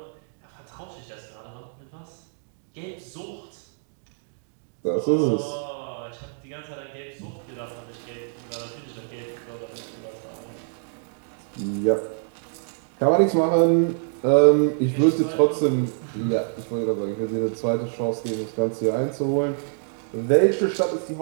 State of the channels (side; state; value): left; silent; digital silence